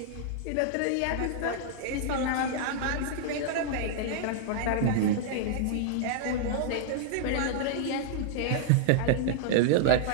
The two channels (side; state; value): both; different; correlation -0.01